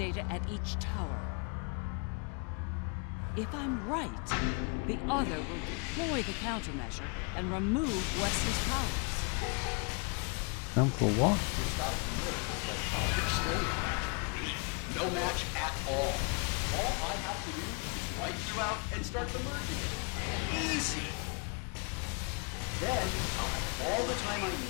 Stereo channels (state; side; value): quieter; right; 35.0 dB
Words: at each tower. If I'm right, the Other will deploy the countermeasure and remove Wesley's powers. And for what? No match at all. All I have to do is wipe you out and start the merging. Easy. Then I'll have all the time I